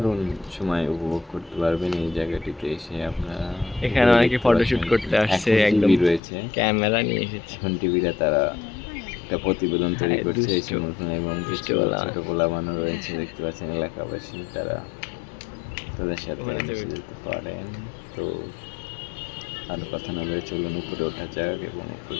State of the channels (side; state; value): right; drops out; at 6.2 s